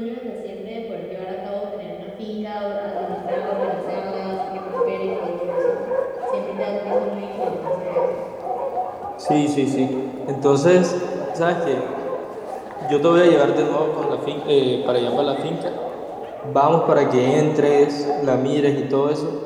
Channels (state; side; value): identical; both; correlation 1.00